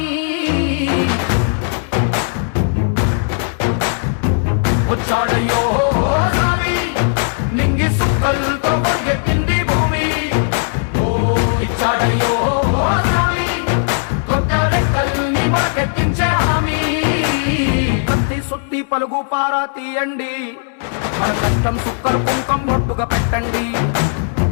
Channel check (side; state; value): right; silent; digital silence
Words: వచ్చాడయ్యో స్వామి నింగి సుక్కలతో గొడుగెత్తింది భూమి ఓ ఇచ్చాడయ్యో స్వామి కొత్త రెక్కల్ని మొలకెత్తించే హామీ కత్తి సుత్తి పలుగు పారా తీయండి మన కష్టం సుక్కలు కుంకం బొట్టుగా పెట్టండి